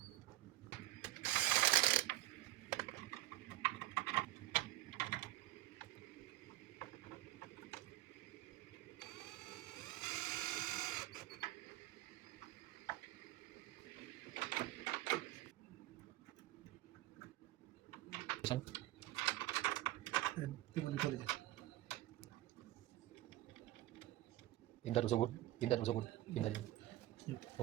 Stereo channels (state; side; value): quieter; left; 16.1 dB